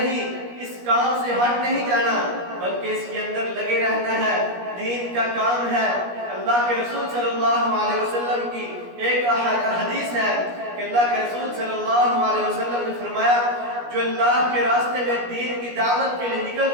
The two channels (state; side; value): late; left; 17 ms